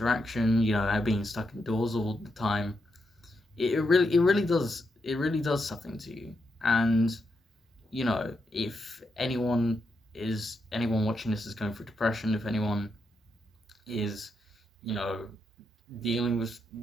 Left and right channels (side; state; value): both; normal; correlation 0.82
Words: Being stuck indoors all the time. It really does something to you. And if anyone watching this is going through depression, if anyone is, you know, dealing with